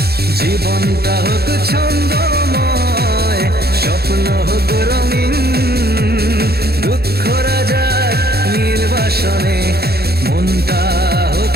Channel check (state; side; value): late; left; 0.46 ms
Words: জীবনটা হোক ছন্দময়, স্বপ্ন হোক রঙিন, দুঃখরা যাক নির্বাসনে, মনটা হোক